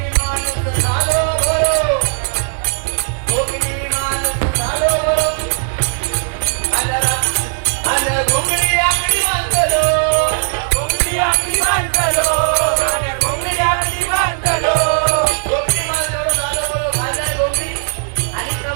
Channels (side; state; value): left; silent; 68 dB below the other